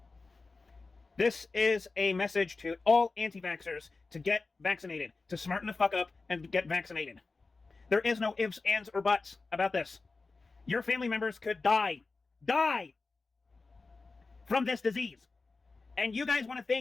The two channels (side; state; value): right; quieter; 3.9 dB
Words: This is a message to all anti-vaxxers to get vaccinated, to smarten the fuck up and get vaccinated. There is no ifs, ands, or buts about this. Your family members could die from this disease. And you guys want to